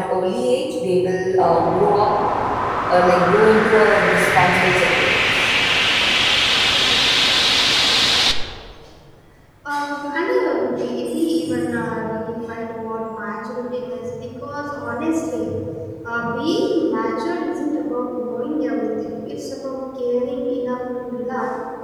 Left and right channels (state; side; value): identical; both; correlation 1.00